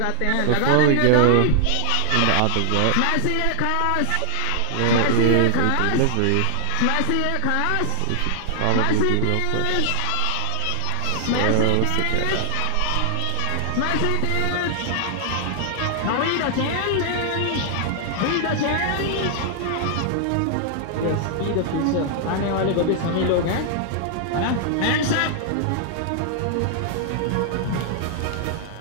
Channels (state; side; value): different; both; correlation 0.00